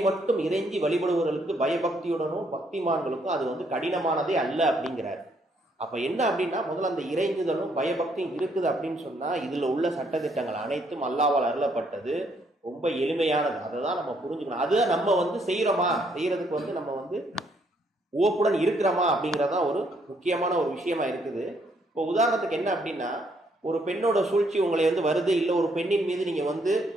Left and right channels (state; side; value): normal; both; correlation 0.70